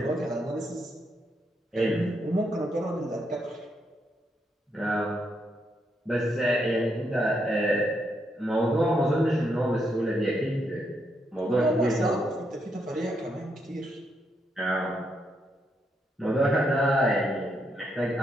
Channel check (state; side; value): normal; both; correlation 0.79